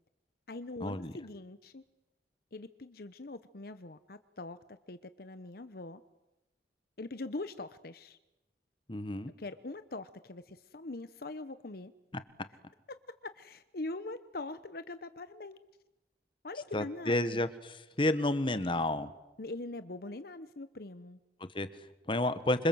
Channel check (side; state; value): both; normal; correlation 0.47